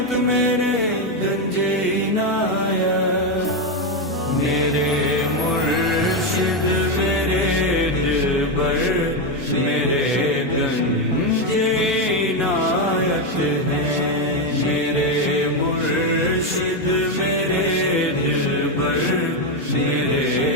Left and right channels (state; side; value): normal; both; correlation 0.07